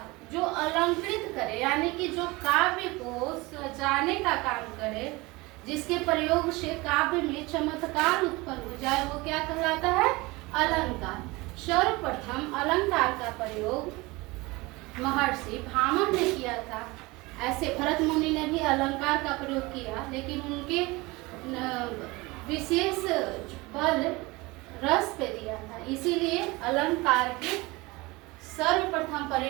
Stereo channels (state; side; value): quieter; left; 22.9 dB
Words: जो अलंकृत करे यानी कि जो काव्य को सजाने का काम करे, जिसके प्रयोग से काव्य में चमत्कार उत्पन्न हो जाए, वो क्या कहलाता है? अलंकार। सर्वप्रथम अलंकार का प्रयोग महर्षि भामह ने किया था। ऐसे भरत मुनि ने भी अलंकार का प्रयोग किया, लेकिन उनके विशेष बल रस पे दिया था, इसीलिए अलंकार के सर्वप्रथम